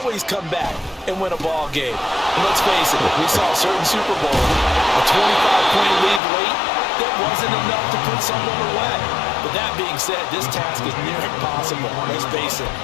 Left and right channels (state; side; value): drops out; right; at 6.2 s